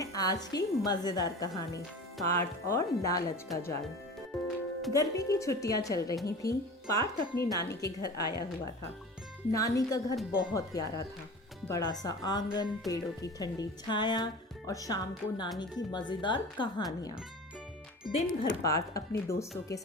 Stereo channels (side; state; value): both; normal; correlation 0.36